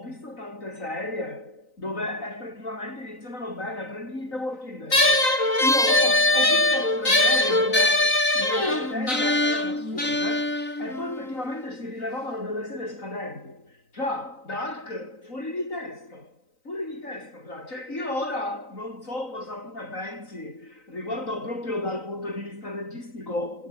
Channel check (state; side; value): late; right; 3.9 ms